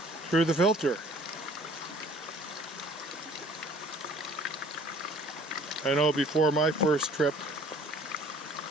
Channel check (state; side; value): normal; both; correlation 0.53